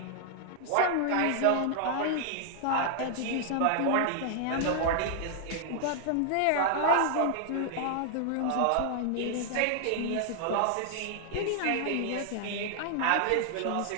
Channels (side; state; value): both; different; correlation 0.00